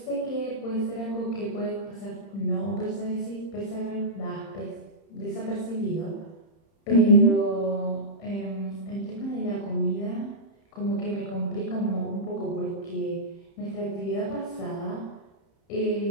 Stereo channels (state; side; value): late; right; 30 ms